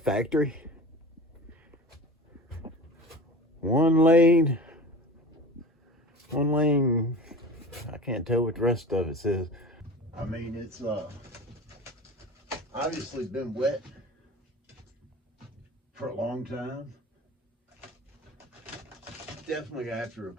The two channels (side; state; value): both; normal; correlation 0.35